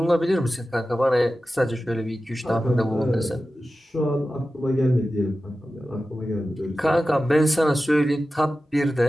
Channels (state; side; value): normal; both; correlation 0.94